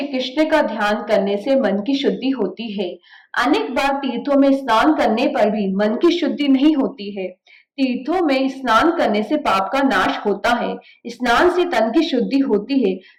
कृष्ण का ध्यान करने से मन की शुद्धि होती है। अनेक बार तीर्थों में स्नान करने पर भी मन की शुद्धि नहीं होती है। तीर्थों में स्नान करने से पाप का नाश होता है। स्नान से तन की शुद्धि होती है।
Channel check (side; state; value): both; identical; correlation 1.00